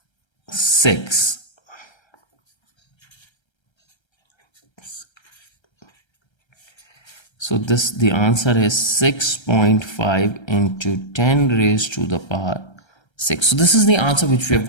6. So this, the answer is 6.5 into 10 raised to the power 6. So this is the answer which we have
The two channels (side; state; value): right; late; 1.3 ms